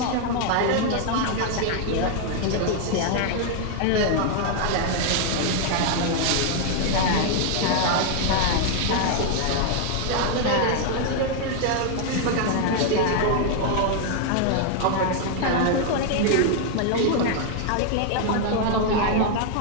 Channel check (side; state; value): both; different; correlation 0.00